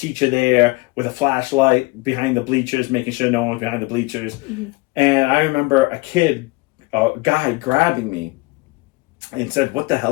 there with a flashlight behind the bleachers, making sure no one was behind the bleachers. Mm-hmm. And I remember a guy grabbing me and said, "What the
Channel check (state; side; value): quieter; right; 24.0 dB